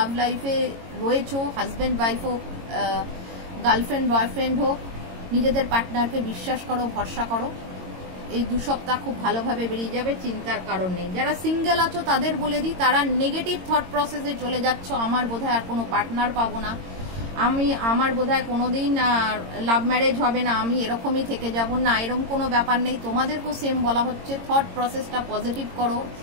লাইফে রয়েছো, হাজব্যান্ড ওয়াইফ হোক, গার্লফ্রেন্ড বয়ফ্রেন্ড হোক, নিজেদের পার্টনারকে বিশ্বাস করো, ভরসা করো। এই 2 সপ্তাহ খুব ভালোভাবে বেরিয়ে যাবে, চিন্তার কারণ নেই। যারা সিঙ্গেল আছো তাদের বলে দিই, তারা নেগেটিভ থট প্রসেসে চলে যাচ্ছ, আমার বোধহয় আর কোনো পার্টনার পাবো না, আমার বোধহয় কোনোদিন লাভ ম্যারেজ হবে না, আমি এরকমই থেকে যাব না, এরকম কোনো ব্যাপার নেই। তোমাদেরকেও সেম বলা হচ্ছে, থট প্রসেসটা পজিটিভ করো,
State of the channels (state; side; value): late; left; 22 ms